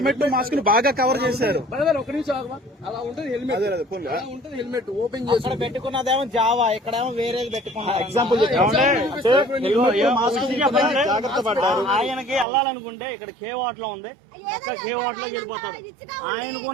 మాస్క్ ని బాగా కవర్ చేశారు. ఒక నిమిషం అలా ఉంటుంది హెల్మెట్, ఉంటుంది హెల్మెట్ ఓపెన్ చేసి పెట్టుకున్నదేమో జావా, ఇక్కడేమో వేరేది పెట్టుకున్నా. ఎగ్జాంపుల్ జాగ్రత్త పడ్డారు. ఆయనకి వెళ్ళాలనుకుంటే ఇక్కడ కేవాట్ లో ఉంది, కేవాట్ లో వెళ్ళిపోతాడు. ఆయనకు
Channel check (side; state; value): left; drops out; at 12.5 s